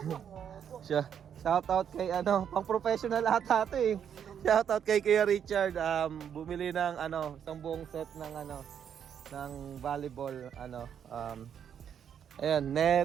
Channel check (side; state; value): left; quieter; 8.5 dB